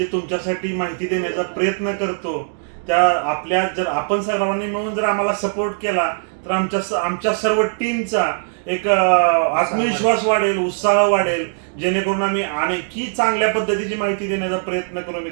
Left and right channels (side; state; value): left; silent; digital silence